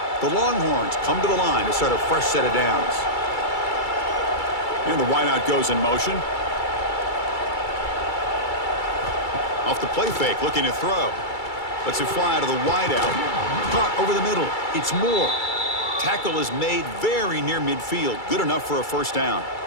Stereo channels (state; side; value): late; right; 2.3 ms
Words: The Longhorns come to the line to start a fresh set of downs. And the wideout goes in motion. Off the play fake, looking to throw. Lets it fly to the wideout. Caught over the middle. It's Moore. Tackle is made very near midfield. Good enough for a first down.